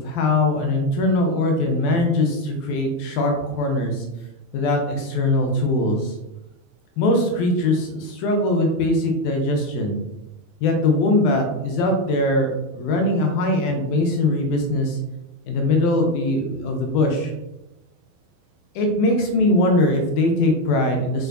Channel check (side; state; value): right; late; 12 ms